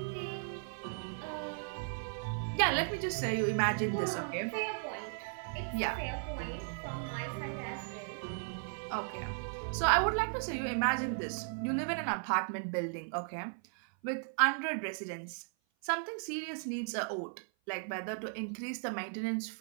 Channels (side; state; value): left; silent; 54 dB below the other